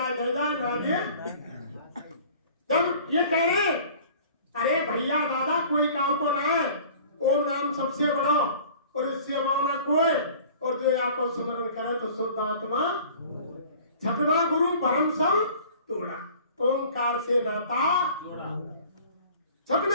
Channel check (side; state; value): both; inverted; correlation -0.47